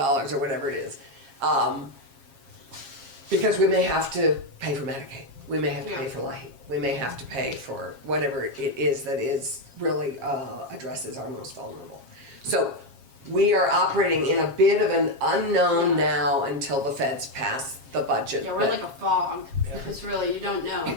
whatever it is, because we may have to pay for Medicaid, we may have to pay for LIHEAP, we may have to pay for whatever it is that is really addresses our most vulnerable. So we are operating in a bit of an unknown now until the feds pass the budget. Yeah, we're like a fog. It's really, you don't know.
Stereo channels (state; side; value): late; left; 7.4 ms